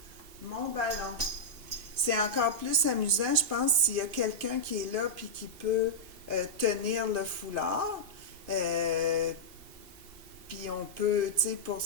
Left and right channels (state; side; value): late; left; 2.8 ms